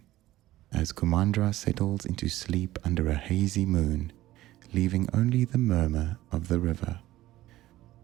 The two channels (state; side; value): quieter; left; 15.7 dB